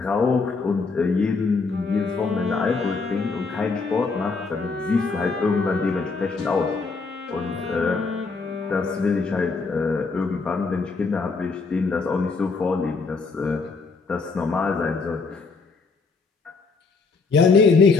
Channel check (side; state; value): right; quieter; 4.4 dB